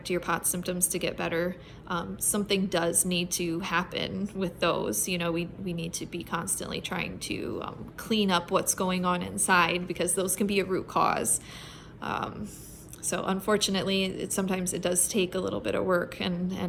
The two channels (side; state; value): both; identical; correlation 1.00